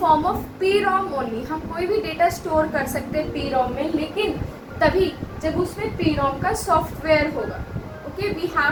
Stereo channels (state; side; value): identical; both; correlation 1.00